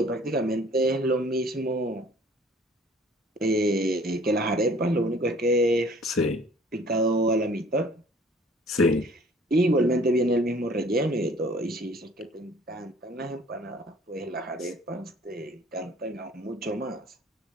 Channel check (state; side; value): normal; both; correlation 0.53